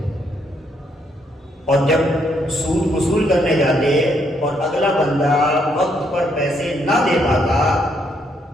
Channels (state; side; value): normal; both; correlation 0.73